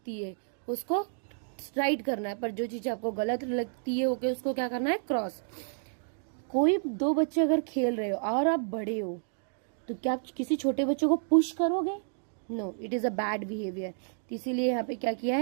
है उसको राइट करना है, पर जो चीज आपको गलत लगती है ओके उसको क्या करना है? क्रॉस। कोई दो बच्चे अगर खेल रहे हो और आप बड़े हो तो क्या आप किसी छोटे बच्चे को पुश करोगे? No, it is a bad behaviour. इसीलिए यहाँ पे क्या किया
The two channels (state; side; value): silent; left; digital silence